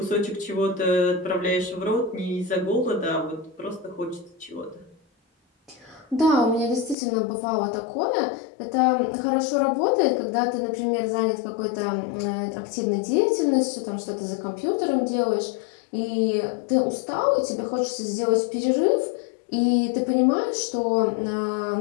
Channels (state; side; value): drops out; right; at 7.0 s